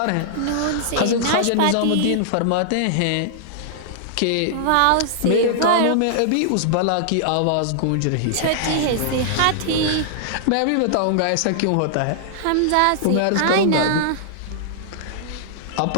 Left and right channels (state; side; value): different; both; correlation -0.01